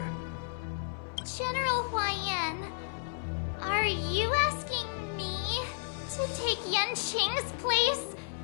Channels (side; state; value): right; silent; 56 dB below the other